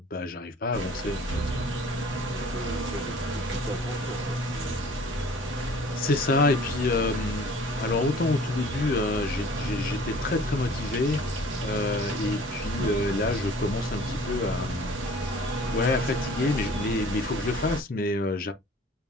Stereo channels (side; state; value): both; normal; correlation 0.49